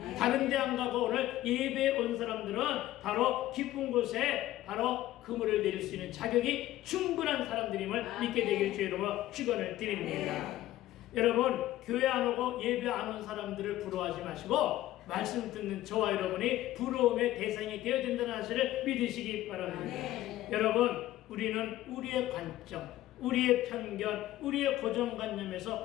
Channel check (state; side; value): quieter; right; 14.8 dB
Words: 다른 데 안 가고 오늘 예배에 온 사람들은 바로 깊은 곳에 바로 그물을 내릴 수 있는 자격이 충분한 사람들임을 믿게 되기를 주의 이름으로 축원을 드립니다. 여러분, 교회 안 오고 예배 안 온 사람들을 부러워하지 마시고 말씀 듣는 저와 여러분이 부러움의 대상이 되어야 된다는 사실을 믿으시기 바랍니다. 여러분, 우리는 우리의 관점, 우리의 편견, 우리의 고정관념에서